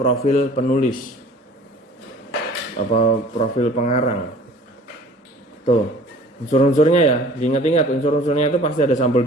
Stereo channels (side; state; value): both; normal; correlation 0.48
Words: penulis, apa profil pengarang. Tuh unsur-unsurnya ya, diingat-ingat unsur-unsurnya itu pasti ada sampul